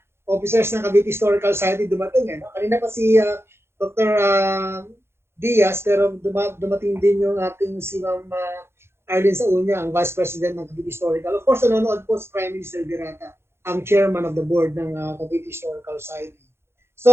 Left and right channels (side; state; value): left; late; 0.12 ms